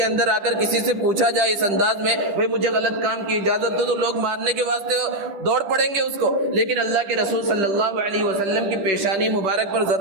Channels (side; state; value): left; late; 10 ms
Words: اندر آ کر کسی سے پوچھا جائے اس انداز میں بھئی مجھے غلط کام کی اجازت دو، تو لوگ مارنے کے واسطے دوڑ پڑیں گے اس کو، لیکن اللہ کے رسول صلی اللہ علیہ وسلم کی پیشانی مبارک پر